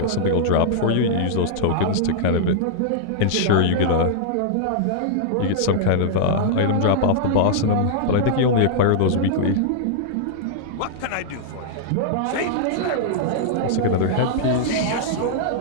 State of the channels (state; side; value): different; both; correlation -0.01